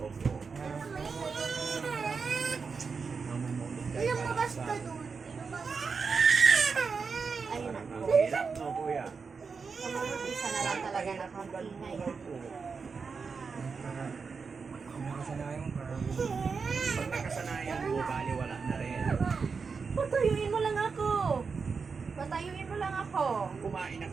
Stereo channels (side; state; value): left; quieter; 5.2 dB